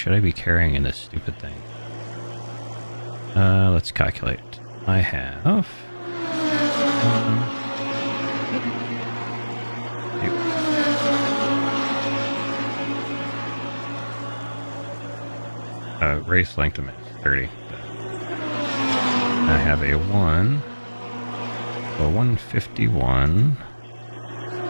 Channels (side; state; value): both; inverted; correlation -1.00